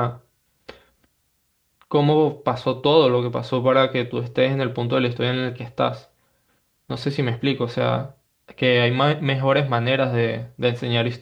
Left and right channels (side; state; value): both; identical; correlation 1.00